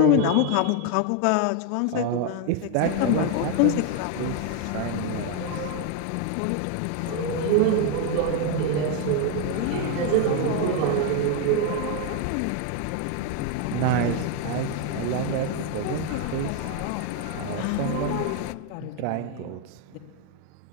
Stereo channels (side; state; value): both; different; correlation 0.01